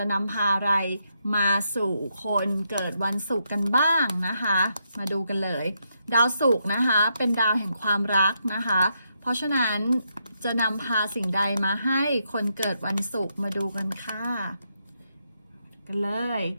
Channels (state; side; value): inverted; both; correlation -0.80